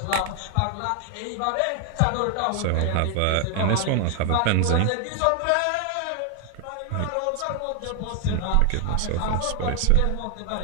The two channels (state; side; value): different; both; correlation 0.00